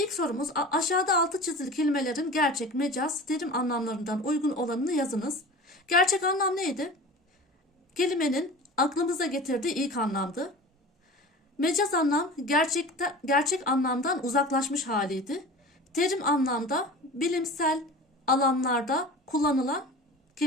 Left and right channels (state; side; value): normal; both; correlation 0.37